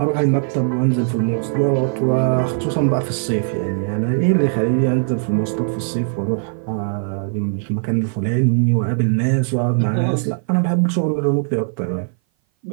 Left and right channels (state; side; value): silent; left; 58 dB below the other